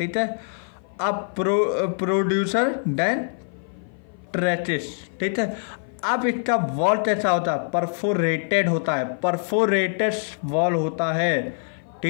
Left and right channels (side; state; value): right; silent; 55 dB below the other